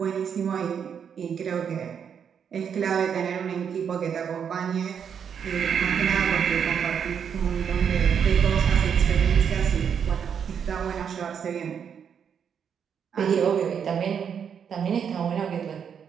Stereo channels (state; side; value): quieter; left; 7.5 dB